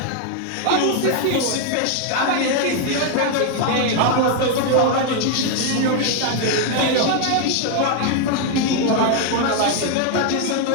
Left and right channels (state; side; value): different; both; correlation 0.01